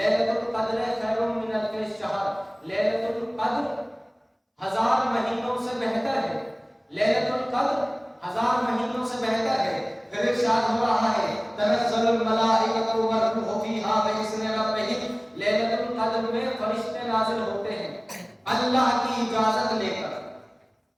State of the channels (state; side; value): identical; both; correlation 1.00